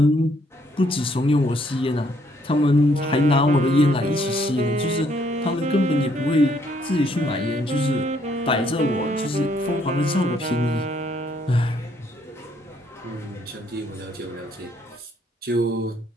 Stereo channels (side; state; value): both; normal; correlation 0.68